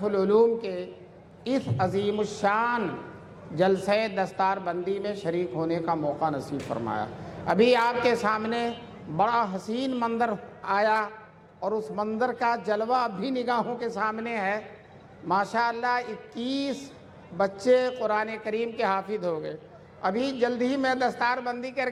العلوم کے اس عظیم الشان جلسہ دستار بندی میں شریک ہونے کا موقع نصیب فرمایا۔ ابھی آپ کے سامنے بڑا حسین منظر آیا اور اس منظر کا جلوہ اب بھی نگاہوں کے سامنے ہے۔ ماشاءاللہ 21 بچے قرآن کریم کے حافظ ہو گئے۔ ابھی جلد ہی میں دستار بندی کر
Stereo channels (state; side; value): identical; both; correlation 1.00